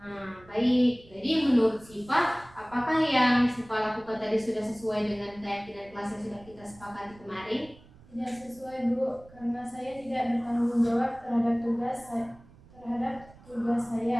Nah, baik. Jadi menurut Siva, apakah yang Siva lakukan tadi sudah sesuai dengan keyakinan kelas yang sudah kita sepakati kemarin? Tidak sesuai Bu, karena saya tidak bertanggung jawab terhadap tugas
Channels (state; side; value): noise; right; rumble, 24 dB below the sound